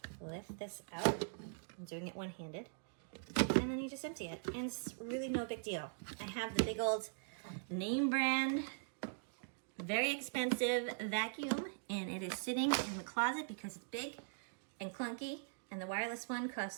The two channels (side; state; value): left; silent; digital silence